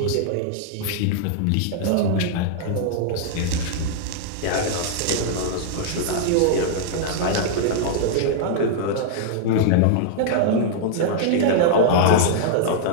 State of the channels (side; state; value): both; different; correlation -0.01